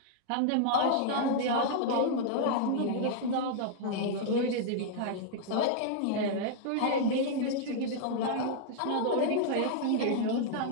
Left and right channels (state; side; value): different; both; correlation -0.01